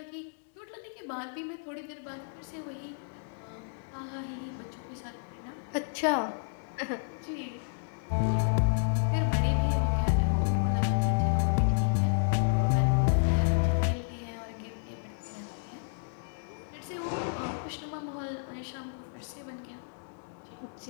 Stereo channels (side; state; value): right; silent; digital silence